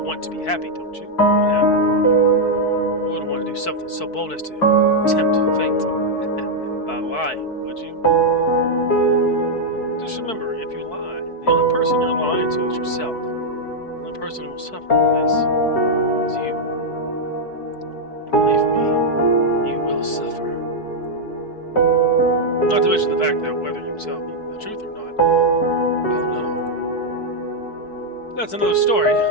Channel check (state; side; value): late; right; 4.6 ms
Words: want to be happy, don't you? Yeah. You wouldn't want to do something so bold as to tempt fate by lying, would you? Just remember, if you lie, the only person you're lying to is yourself. The only person who will suffer from this is you. And believe me, you will suffer. Not to mention the fact that whether you tell me the truth or not, I'll know. That's another story.